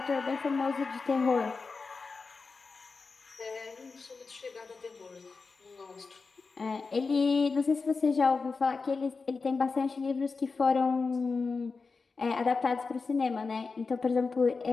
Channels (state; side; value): quieter; right; 4.4 dB